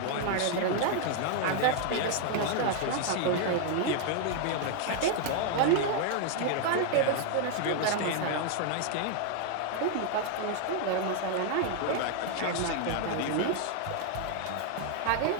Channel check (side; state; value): both; different; correlation 0.00